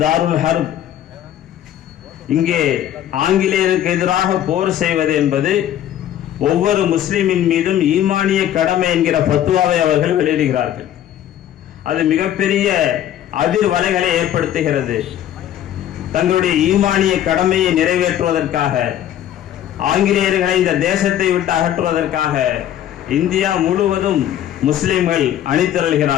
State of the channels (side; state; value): right; quieter; 11.3 dB